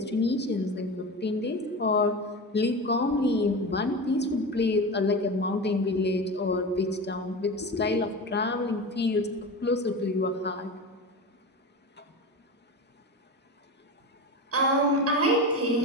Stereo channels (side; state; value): both; normal; correlation 0.26